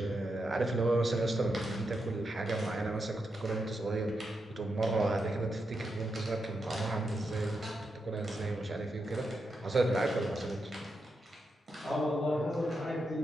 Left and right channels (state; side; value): normal; both; correlation 0.85